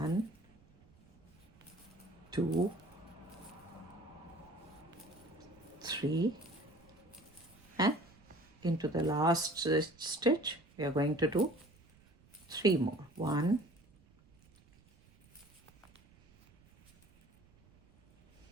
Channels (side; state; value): right; noise; rumble, 28 dB below the sound